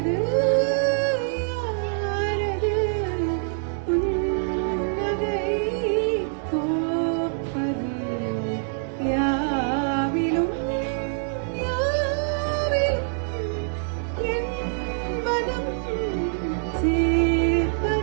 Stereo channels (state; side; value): silent; left; digital silence